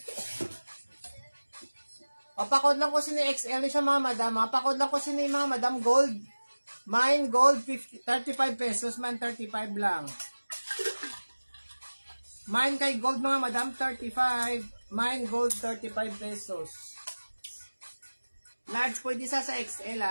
Pakod lang ko sini XL siya mga madam. Pakod lang ko sini mga madam gold. Mine gold 35 pesos man, 35 lang. Mine kay gold mga madam 35. Mine gold 35 pesos. Large pwede sa XL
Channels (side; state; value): both; inverted; correlation -1.00